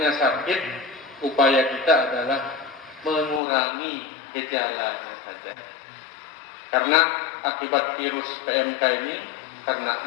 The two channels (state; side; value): drops out; right; at 3.4 s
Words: sakit, upaya kita adalah mengurangi gejalanya saja. Karena akibat virus PMK ini,